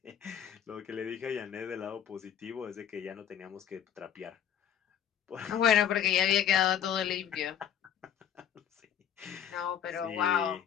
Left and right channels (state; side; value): quieter; right; 9.2 dB